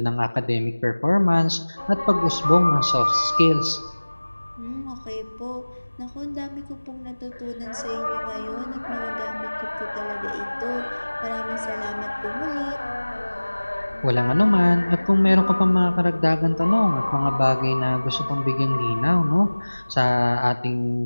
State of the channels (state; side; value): inverted; both; correlation -1.00